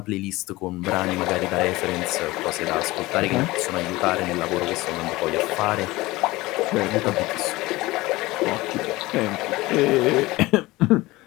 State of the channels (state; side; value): quieter; right; 20.0 dB